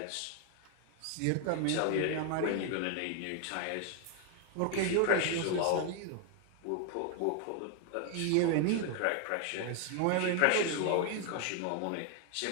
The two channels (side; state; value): both; different; correlation 0.00